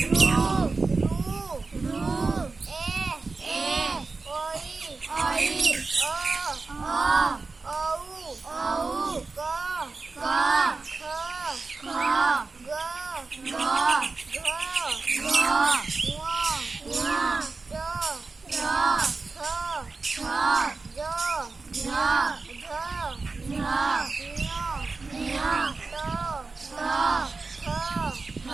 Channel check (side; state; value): left; quieter; 4.0 dB